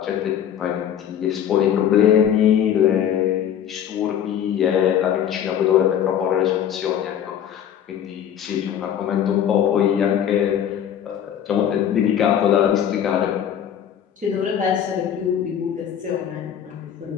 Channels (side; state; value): right; quieter; 9.5 dB